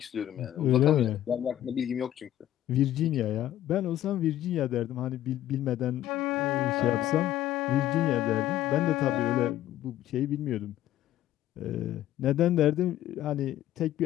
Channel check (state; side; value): quieter; right; 12.8 dB